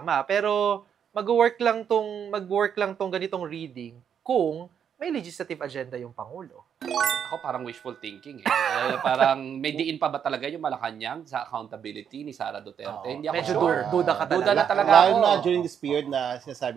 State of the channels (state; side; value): quieter; left; 8.1 dB